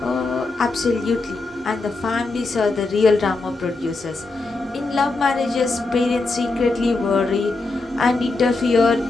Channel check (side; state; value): right; quieter; 3.5 dB